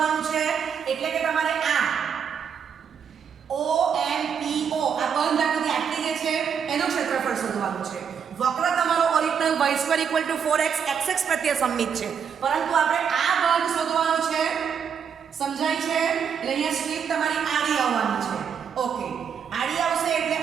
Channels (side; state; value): left; quieter; 7.3 dB